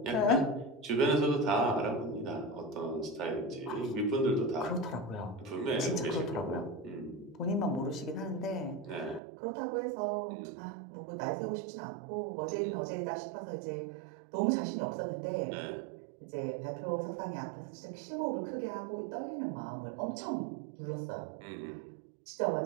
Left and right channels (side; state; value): left; drops out; at 9.2 s